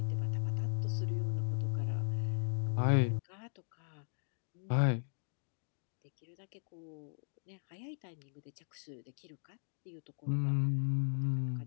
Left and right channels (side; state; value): right; silent; digital silence